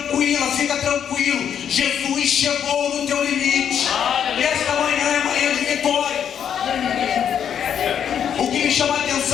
fica tranquilo. Jesus chegou no teu limite. E esta manhã é manhã de vitória. O que me chama a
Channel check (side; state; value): right; quieter; 8.6 dB